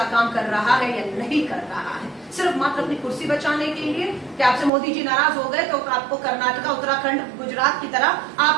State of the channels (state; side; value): drops out; left; at 4.7 s